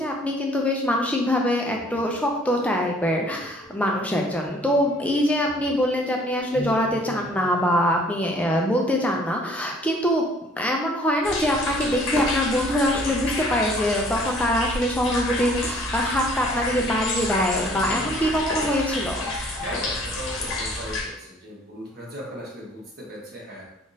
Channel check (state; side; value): normal; both; correlation 0.57